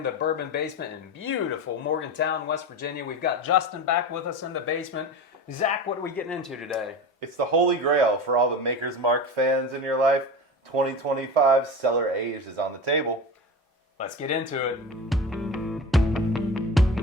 the bourbon basement in beautiful Morgantown, West Virginia. We've got Justin back with us in the basement. Zach, what are we getting into today? It's the holy grail for all the Maker's Mark fans in your life. 2025 Cellar Aged is on the table. Let's get into it.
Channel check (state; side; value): normal; both; correlation 0.28